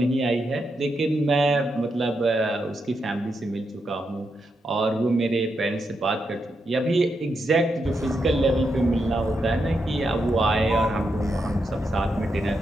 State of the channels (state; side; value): normal; both; correlation 0.83